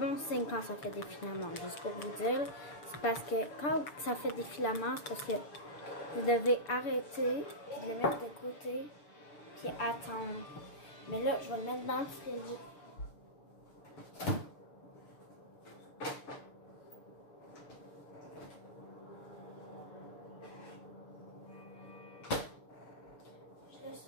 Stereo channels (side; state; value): right; late; 6.8 ms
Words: signe quand ça fait des filaments, juste pour vous dire. C'est parce que quand ça fait des filaments, c'est parce que vous devez arrêter, puis de le mettre de côté, puis attendre. Mais là, je vais le mettre dans le frigo. Je le